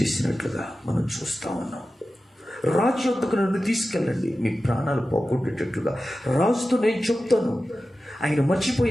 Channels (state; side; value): normal; both; correlation 0.94